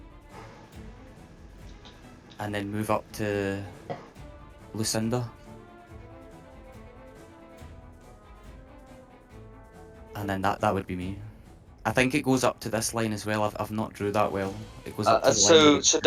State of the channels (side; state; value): both; identical; correlation 1.00